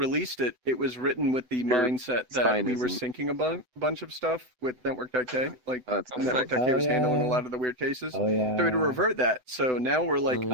it, it was written with the Your mindset that spine we were isn't. syncing a bunch of stuff with Network.k. Like That's Network.k Oh, was handling a yeah. lot of the weird cases. Oh yeah. So we had to revert that. So now we're like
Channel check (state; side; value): late; left; 7.9 ms